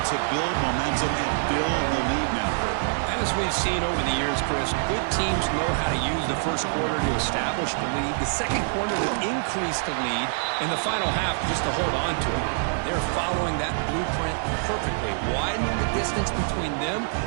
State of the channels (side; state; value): left; silent; 61 dB below the other